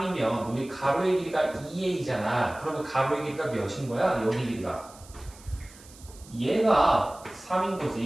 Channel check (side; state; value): right; noise; hiss, 22 dB below the sound